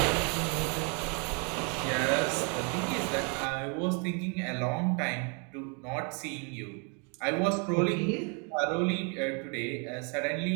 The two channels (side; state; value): left; quieter; 36.1 dB